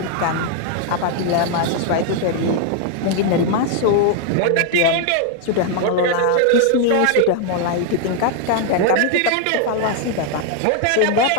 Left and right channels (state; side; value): different; both; correlation 0.00